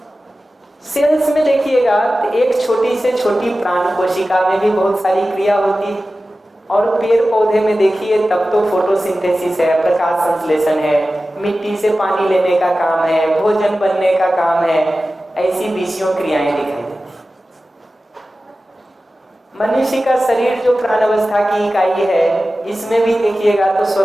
सेल्स में देखिएगा तो एक छोटी से छोटी प्राण कोशिका में भी बहुत सारी क्रिया होती है, और पेड़ पौधे में देखिए तब तो फोटोसिंथेसिस है, प्रकाश संश्लेषण है, मिट्टी से पानी लेने का काम है, भोजन बनने का काम है, ऐसी 20 क्रियाएं दिखाई देती। मनुष्य का शरीर जो प्राणावस्था की इकाई है इसमें भी देखिएगा तो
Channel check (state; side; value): normal; both; correlation 0.95